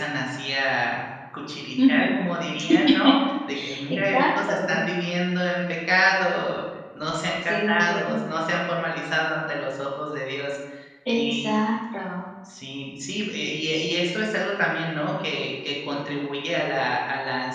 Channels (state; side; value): identical; both; correlation 1.00